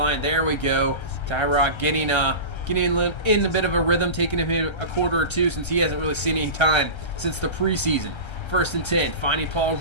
There we go. Tyrod getting in a bit of a rhythm, taking him a quarter or two since he hasn't really seen any time since the preseason. 1st and 10, finding Paul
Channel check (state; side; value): late; right; 1.3 ms